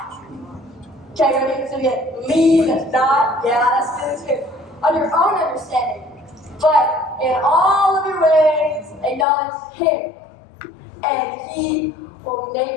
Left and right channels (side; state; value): right; drops out; at 9.2 s